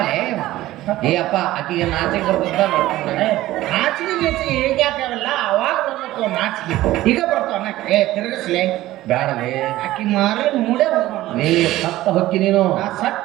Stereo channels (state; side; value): quieter; left; 15.9 dB